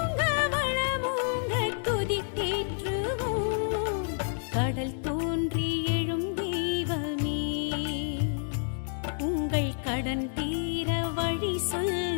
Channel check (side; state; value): right; silent; digital silence